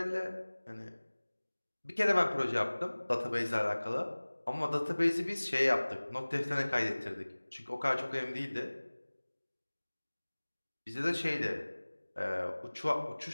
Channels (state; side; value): inverted; both; correlation -1.00